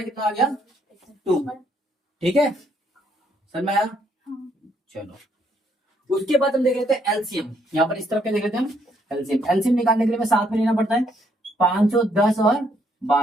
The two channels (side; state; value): both; normal; correlation 0.71